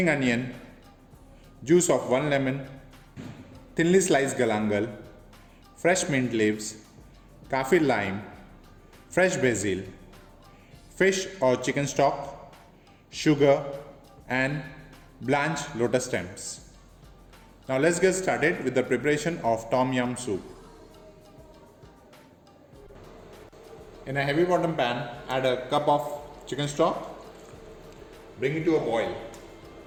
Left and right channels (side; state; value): both; identical; correlation 1.00